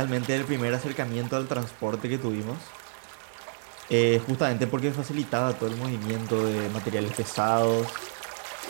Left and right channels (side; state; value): left; silent; digital silence